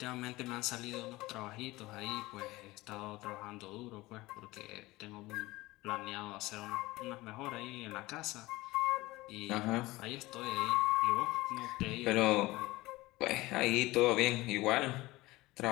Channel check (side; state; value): right; quieter; 19.9 dB